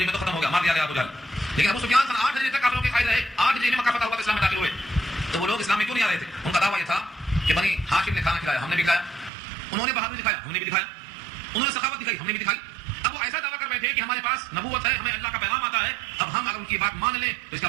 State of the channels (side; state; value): left; drops out; at 9.3 s